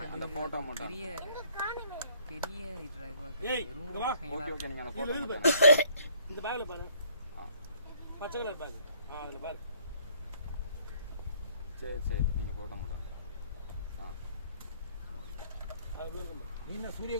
அந்த போட்டோ மட்டும் பெரிய ஏய் இங்க வா. Okay okay. நீங்க அந்த போட்டோ மட்டும் இந்த பேக்ல பாரு. பச்சை கலர் பேக். அதுல பாரு. சரி சரி. நீங்க போட்டோ மட்டும் நீ என்ன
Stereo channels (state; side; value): inverted; both; correlation -0.61